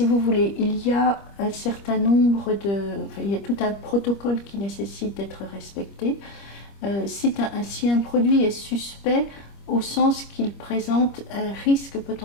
vous voulez, il y a un certain nombre il y a tout un protocole qui nécessite d'être respecté. Si un produit est suspect, au sens qu'il présente un risque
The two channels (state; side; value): late; right; 25 ms